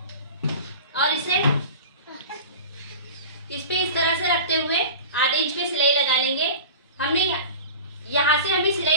और इसे इस पे इस तरह से रखते हुए आधे इंच पे सिलाई लगा लेंगे। हमने यहाँ से हमें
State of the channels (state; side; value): inverted; both; correlation -0.35